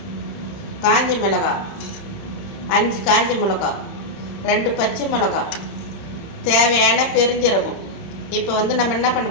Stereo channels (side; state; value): right; late; 30 ms